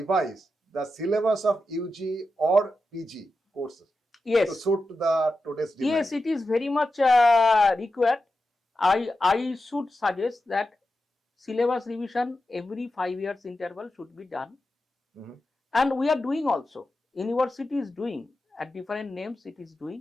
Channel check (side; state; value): both; normal; correlation 0.90